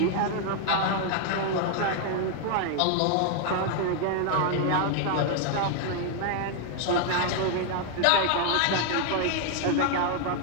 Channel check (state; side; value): different; both; correlation 0.00